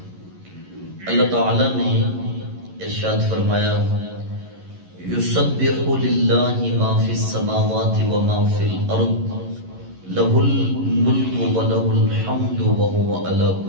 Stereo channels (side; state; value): left; late; 11 ms